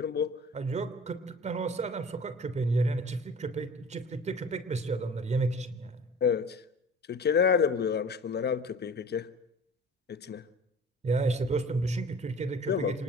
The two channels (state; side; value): normal; both; correlation 0.43